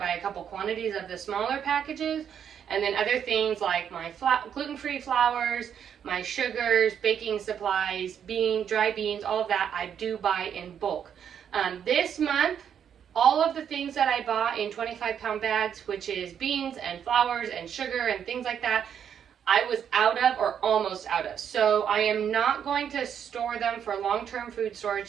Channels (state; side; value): quieter; left; 8.4 dB